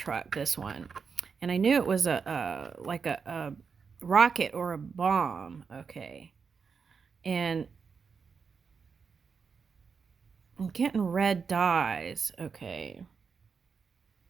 this one. And I knew it was like a rocket or a bomb. Okay. And I'm getting red dyes. Okay.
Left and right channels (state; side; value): quieter; left; 5.7 dB